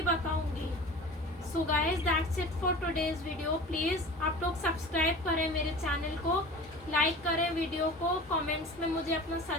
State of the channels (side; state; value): both; normal; correlation 0.38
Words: बताऊंगी। So guys that's it for today's video. Please आप लोग सब्सक्राइब करें मेरे चैनल को, लाइक करें वीडियो को, कमेंट्स में मुझे अपना